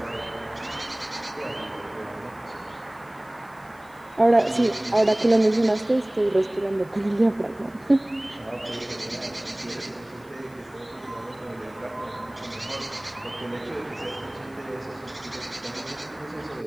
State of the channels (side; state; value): left; noise; hiss, 28 dB below the sound